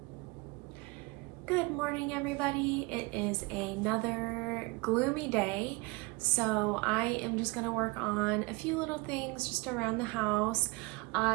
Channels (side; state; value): left; quieter; 26.1 dB